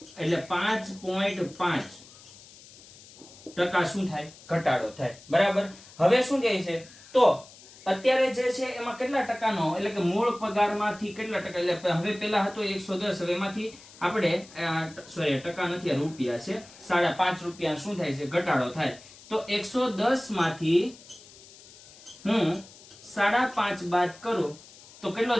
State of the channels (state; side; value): noise; left; hiss, 21 dB below the sound